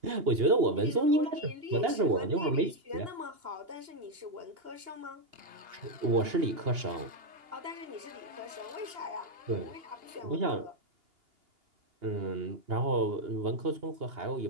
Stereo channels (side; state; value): left; late; 2.8 ms